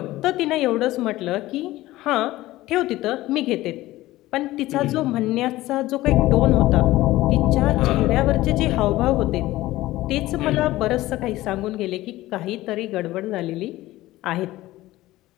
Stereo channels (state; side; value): quieter; right; 17.0 dB